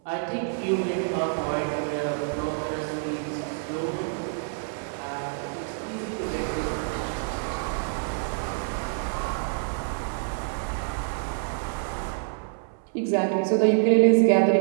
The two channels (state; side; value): silent; left; 60 dB below the other